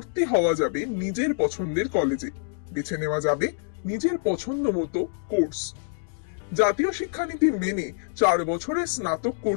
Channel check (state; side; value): silent; right; digital silence